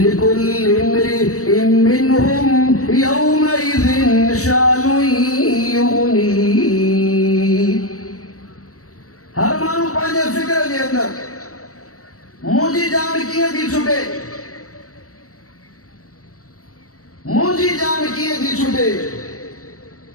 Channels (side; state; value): right; late; 0.65 ms